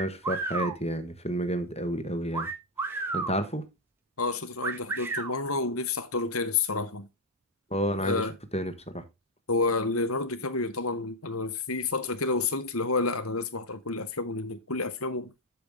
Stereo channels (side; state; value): both; normal; correlation 0.02